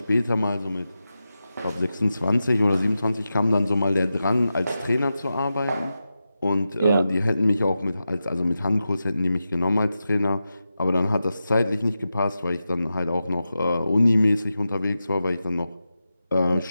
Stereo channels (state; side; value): inverted; both; correlation -0.92